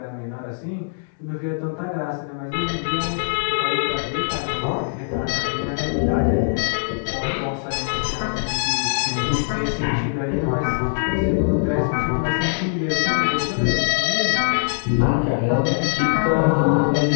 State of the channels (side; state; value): right; silent; 64 dB below the other